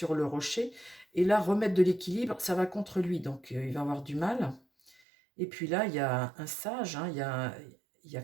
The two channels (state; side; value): drops out; left; at 5.0 s